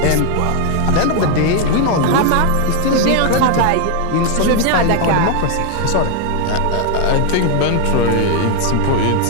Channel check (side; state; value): both; different; correlation 0.01